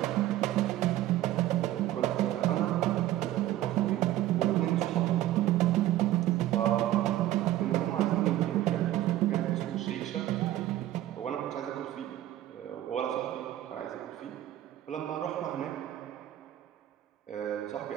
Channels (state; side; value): quieter; left; 13.9 dB